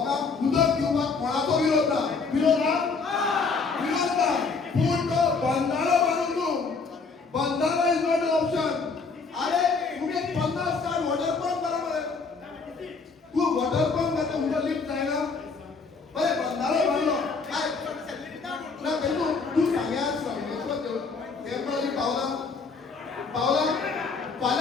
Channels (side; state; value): right; quieter; 4.6 dB